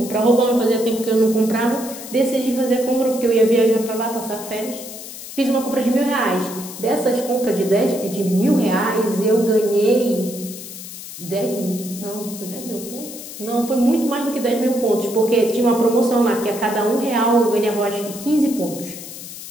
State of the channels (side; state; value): left; noise; hiss, 12 dB below the sound